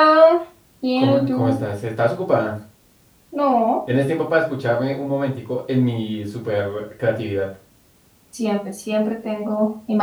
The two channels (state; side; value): identical; both; correlation 1.00